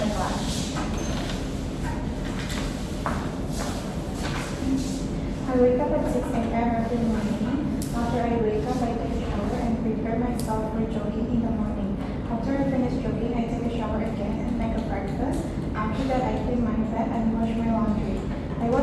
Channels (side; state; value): both; identical; correlation 1.00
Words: class. every morning. After I wake up, I take a shower and prepare myself for jogging in the morning. After I finish jogging, I take a shower again and make a breakfast. After that, I clean my bed and wash my laundry. I